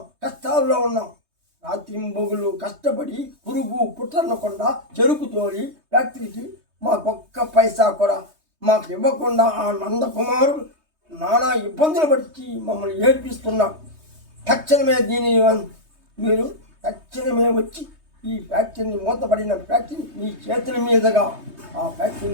కష్టాల్లో ఉన్నాం. రాత్రింబొగులు కష్టపడి పురుగు పుట్టనకుండా చెరుకు తోలి ఫ్యాక్టరీకి మాకొక్క పైసా కూడా మాకు ఇవ్వకుండా ఆ నందకుమారుడు నానా ఇబ్బందులు పట్టి మమ్మల్ని ఏడ్పిస్తున్నాం. తక్షణమే మీరు తక్షణమే వచ్చి ఈ ఫ్యాక్టరీని, మూతపడిన ఫ్యాక్టరీని మీ చేతుల మీదుగా ఆ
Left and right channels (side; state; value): left; late; 3.2 ms